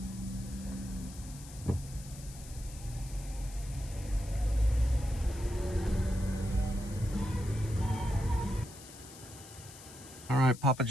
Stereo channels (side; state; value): left; noise; hiss, 17 dB below the sound